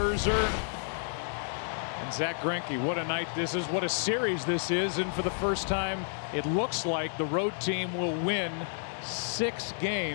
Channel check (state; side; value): silent; right; digital silence